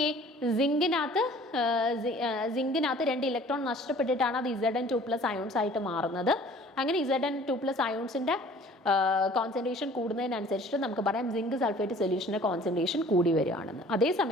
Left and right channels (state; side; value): normal; both; correlation 0.50